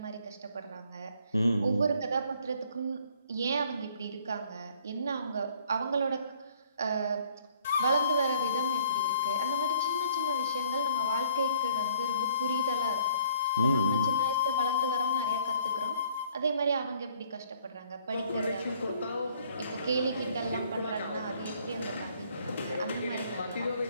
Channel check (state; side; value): inverted; both; correlation -0.60